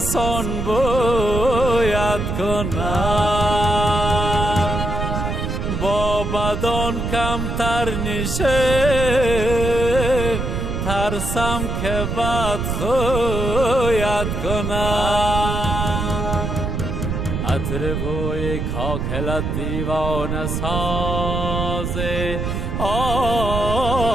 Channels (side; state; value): right; noise; rumble, 2 dB below the sound